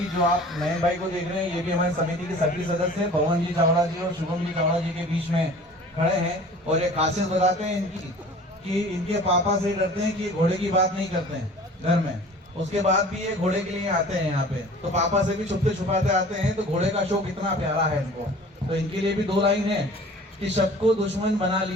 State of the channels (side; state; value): both; normal; correlation 0.45